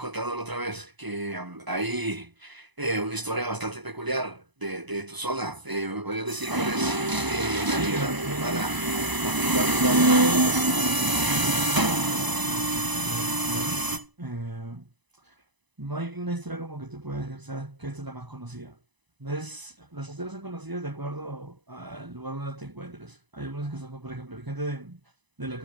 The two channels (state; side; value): late; left; 1.0 ms